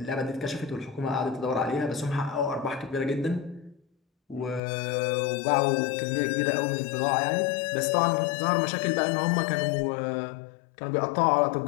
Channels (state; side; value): drops out; right; at 4.6 s